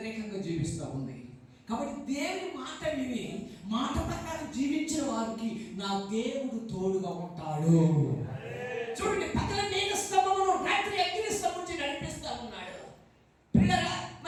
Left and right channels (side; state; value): both; identical; correlation 1.00